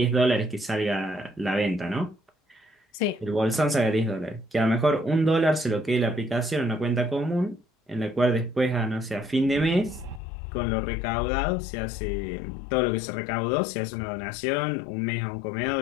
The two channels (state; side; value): drops out; right; at 10.2 s